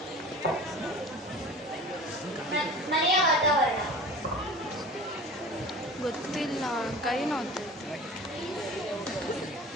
ಮನೆಯ ವಾತಾವರಣ ಗೊತ್ತಿಲ್ಲ, ಕೈ ನೋಡ್ತೈತೆ.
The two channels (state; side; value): normal; both; correlation 0.39